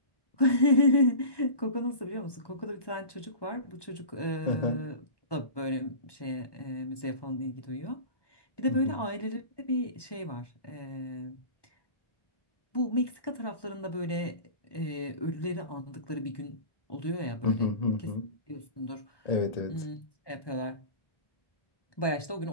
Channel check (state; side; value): late; right; 1.2 ms